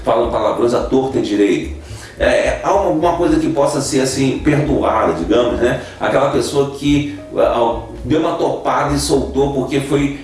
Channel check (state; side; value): identical; both; correlation 1.00